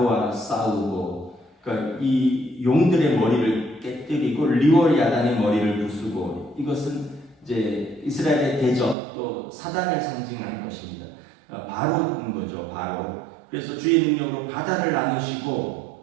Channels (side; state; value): left; drops out; at 9.0 s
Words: 싸우고, 그러니까 이 용들의 머리를 깨뜨리고 리월야단의 머리를 부수고, 이것은 이제 이스라엘의 대적 또 사단을 상징하는 것입니다. 바로인 거죠, 바로. 그래서 주의 능력으로 바다를